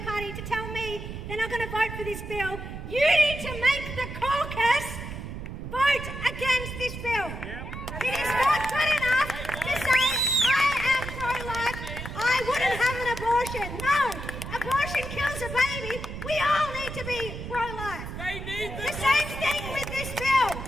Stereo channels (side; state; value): right; noise; rumble, 8 dB below the sound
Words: For this bill, you need to make the caucus vote against this bill. It is not good enough to say, I am pro-life, I wouldn't have an abortion. No, abortion kills a baby. We all need to be pro-life. The same thing with this bill.